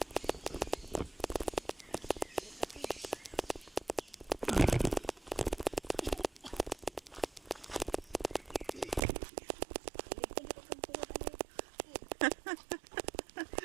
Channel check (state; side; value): drops out; left; at 9.0 s